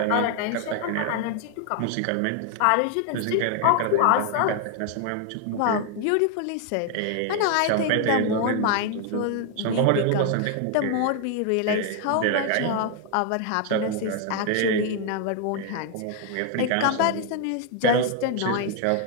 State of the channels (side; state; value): both; different; correlation 0.00